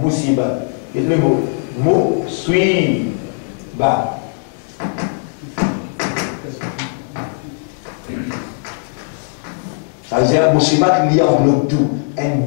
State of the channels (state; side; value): silent; right; 59 dB below the other